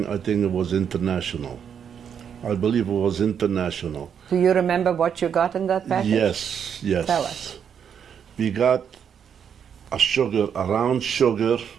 it was international. I believe it was international. Do you remember what you got in that package? Yes. Tell us. We got a round sugar.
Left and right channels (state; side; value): quieter; left; 7.9 dB